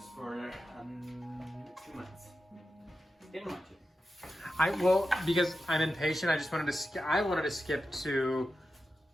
for 2 months. Didn't want to. Because I'm impatient, I just wanted to skip to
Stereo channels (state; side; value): normal; both; correlation 0.91